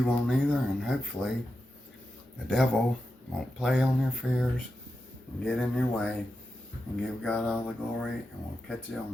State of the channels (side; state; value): both; normal; correlation 0.89